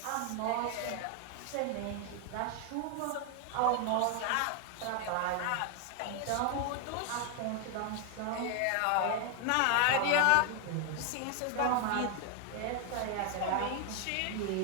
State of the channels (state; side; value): different; both; correlation 0.00